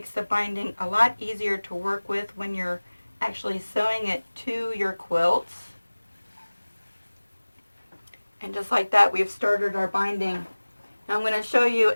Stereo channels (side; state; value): both; inverted; correlation -1.00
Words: the binding a lot easier to work with when you're actually sewing it to your quilts. And just like that, we've started our binding. Now I'm going to show you